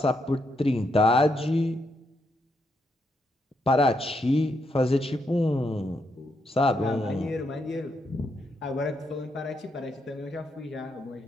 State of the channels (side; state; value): both; normal; correlation 0.79